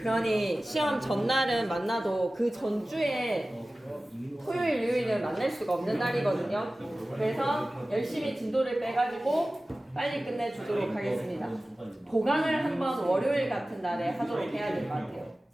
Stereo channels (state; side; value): normal; both; correlation 0.96